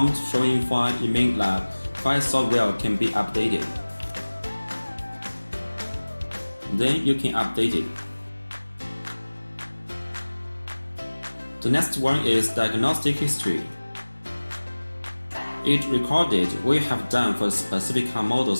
showing file, it means that file software can be updated. Then you can update it. The next one is Diagnostic History. It recorded what you have done for specific car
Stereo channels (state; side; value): inverted; both; correlation -1.00